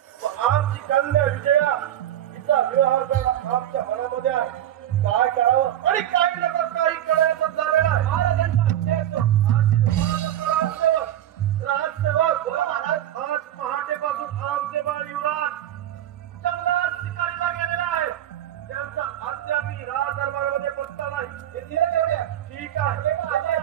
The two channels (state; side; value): quieter; left; 11.9 dB